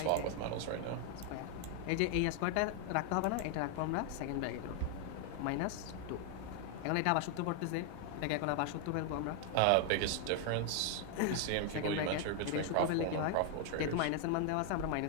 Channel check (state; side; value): different; both; correlation 0.00